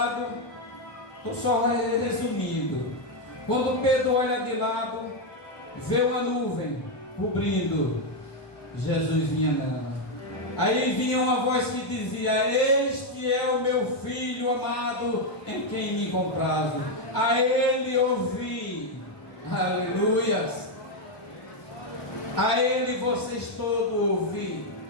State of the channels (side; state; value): right; late; 1.2 ms